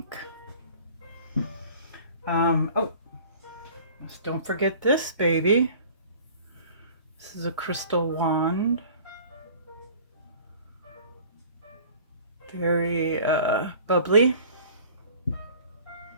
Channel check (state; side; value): inverted; both; correlation -0.47